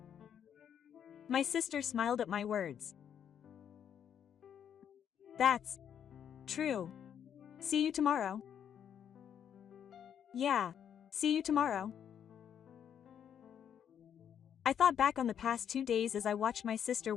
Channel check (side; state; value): right; quieter; 8.8 dB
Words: My sister smiled at my words. "That's true. See you tomorrow." "Yeah, see you tomorrow." I thought back on the past 2 days as I watched my sister